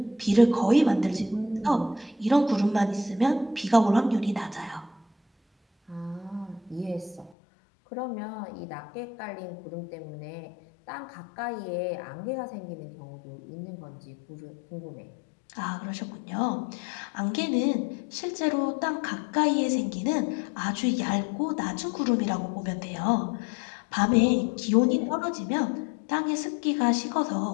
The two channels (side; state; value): right; drops out; at 7.3 s